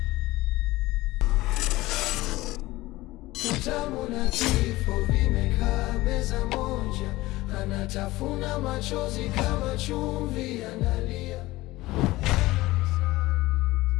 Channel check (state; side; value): quieter; right; 18.7 dB